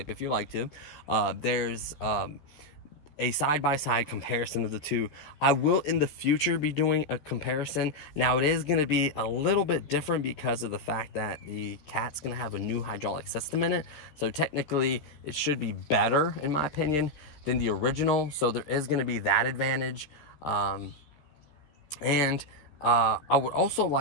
if you like to. There's a side-by-side comparison of the two. I will in the future be doing a comparison. Now it is going to be a little bit different because of the fact that the Cat's going to have a new hydraulic system in it. So technically it should be better, in my opinion, than the original. So there is going to be that advantage. I would also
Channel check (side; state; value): right; late; 13 ms